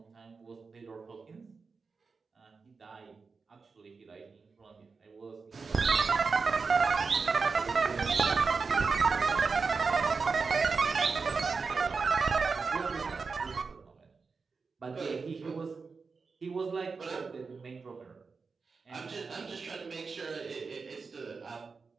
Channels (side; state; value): left; quieter; 4.7 dB